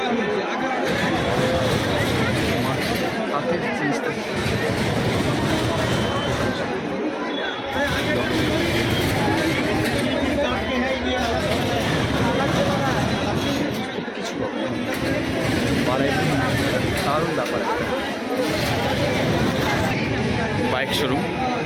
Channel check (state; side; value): identical; both; correlation 1.00